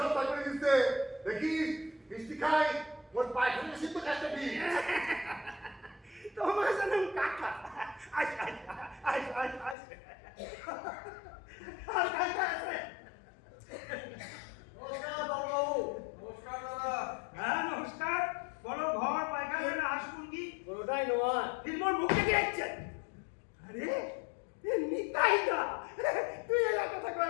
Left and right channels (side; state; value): right; drops out; at 9.8 s